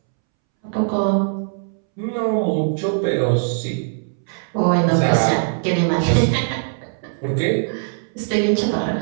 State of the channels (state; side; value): silent; left; 65 dB below the other